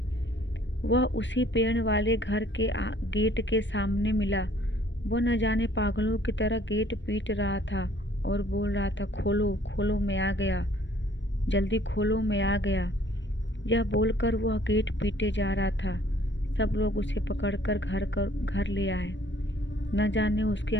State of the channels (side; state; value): right; late; 0.53 ms